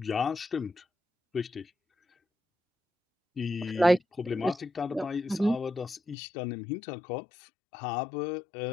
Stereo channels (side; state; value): right; drops out; at 6.2 s